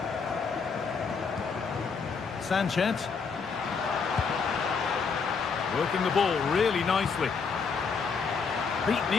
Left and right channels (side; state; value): right; quieter; 5.4 dB